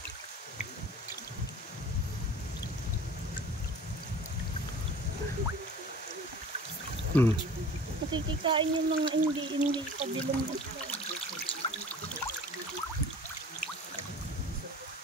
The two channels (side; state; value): both; normal; correlation 0.43